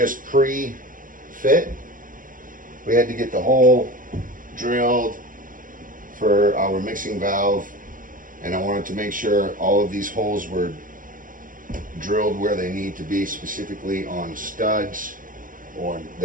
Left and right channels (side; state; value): left; late; 0.39 ms